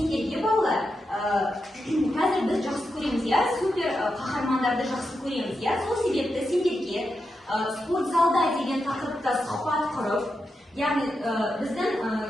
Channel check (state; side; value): normal; both; correlation 0.87